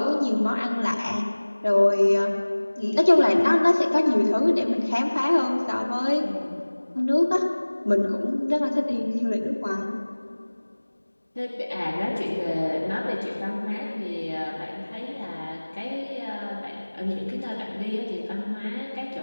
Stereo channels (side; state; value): both; inverted; correlation -1.00